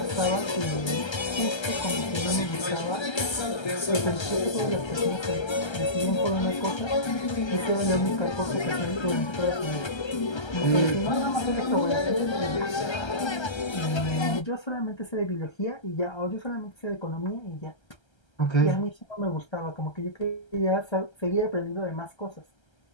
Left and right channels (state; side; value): late; right; 1.3 ms